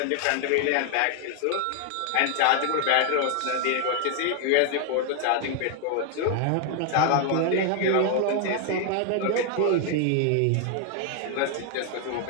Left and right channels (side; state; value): both; different; correlation 0.00